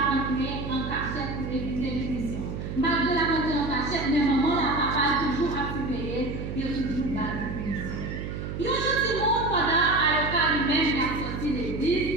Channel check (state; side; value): noise; right; hum, 6 dB below the sound